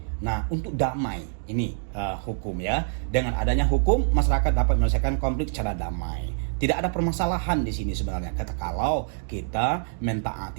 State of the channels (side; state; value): left; silent; digital silence